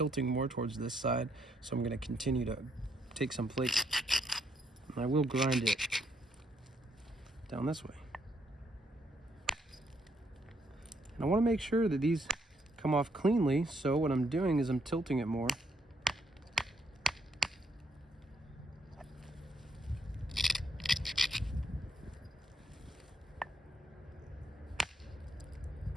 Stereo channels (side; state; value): both; normal; correlation 0.74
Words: more towards this side, so I'm going to continue to take some flake, and I will grind it down this way. And I want to make sure that these come off cleanly, so what I'm doing is I'm tilting it more.